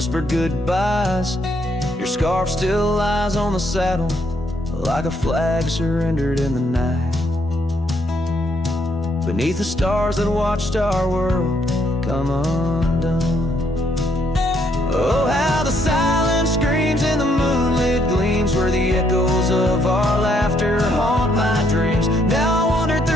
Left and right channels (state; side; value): normal; both; correlation 0.72